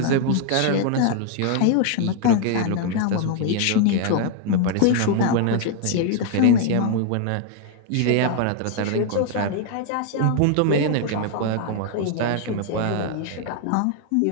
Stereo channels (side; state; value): both; different; correlation 0.00